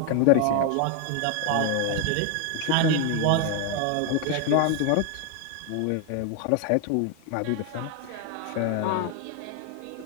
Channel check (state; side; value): different; both; correlation 0.01